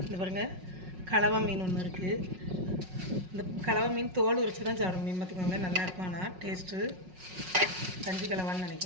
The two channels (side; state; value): left; late; 5.4 ms